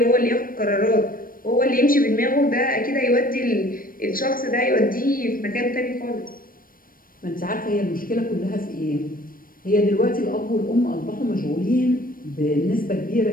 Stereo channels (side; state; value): right; late; 0.41 ms